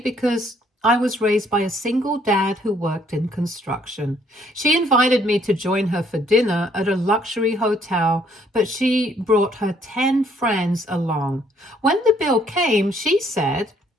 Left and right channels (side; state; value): both; normal; correlation 0.66